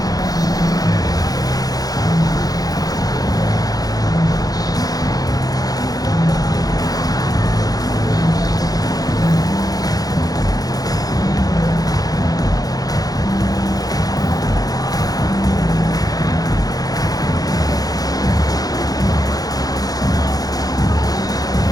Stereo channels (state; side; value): late; right; 0.18 ms